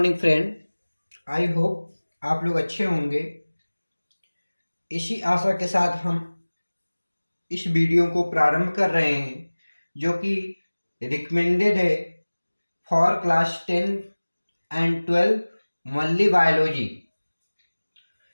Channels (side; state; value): both; inverted; correlation -1.00